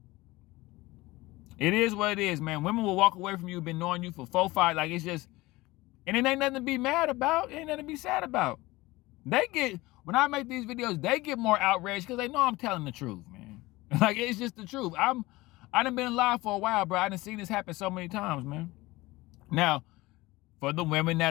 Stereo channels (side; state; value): right; quieter; 20.1 dB